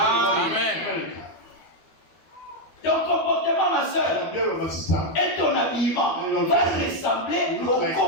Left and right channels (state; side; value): late; right; 13 ms